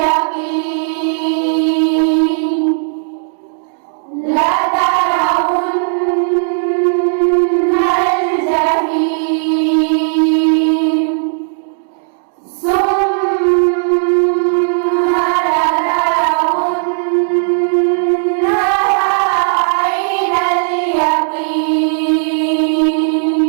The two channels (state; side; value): silent; left; digital silence